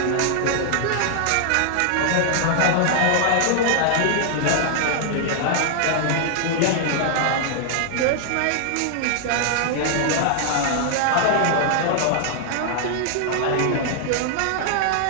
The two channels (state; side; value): different; both; correlation 0.00